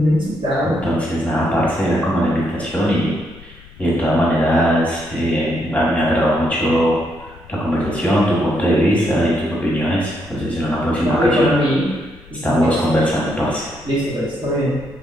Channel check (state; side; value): noise; left; rumble, 22 dB below the sound